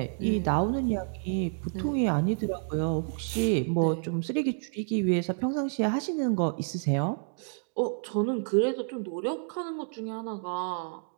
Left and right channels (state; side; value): silent; left; 58 dB below the other